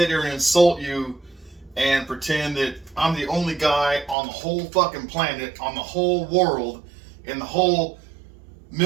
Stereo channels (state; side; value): drops out; left; at 4.2 s